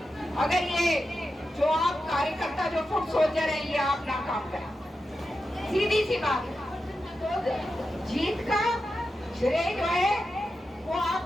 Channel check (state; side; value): normal; both; correlation 0.90